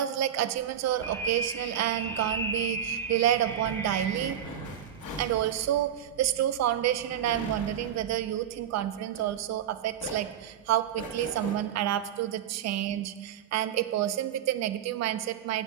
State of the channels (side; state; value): left; quieter; 9.9 dB